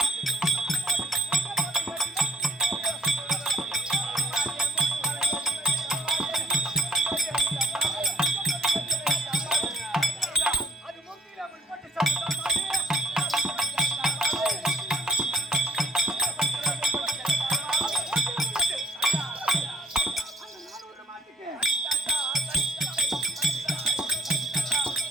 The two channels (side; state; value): both; normal; correlation 0.62